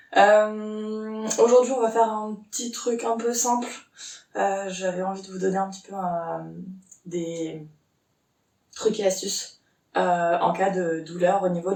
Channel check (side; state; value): both; identical; correlation 1.00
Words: Aujourd'hui on va faire un petit truc un peu simple. J'avais envie de vous donner un petit peu des trucs et astuces en cas de douleur au niveau